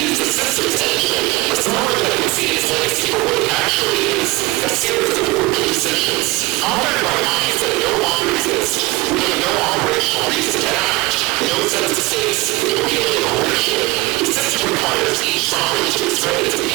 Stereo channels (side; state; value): left; quieter; 21.5 dB